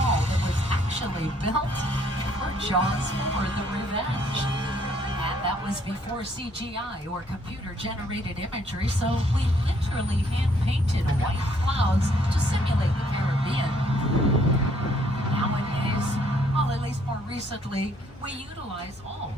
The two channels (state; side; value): normal; both; correlation 0.66